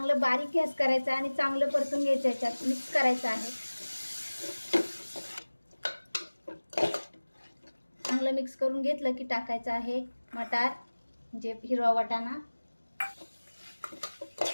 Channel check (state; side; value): inverted; both; correlation -1.00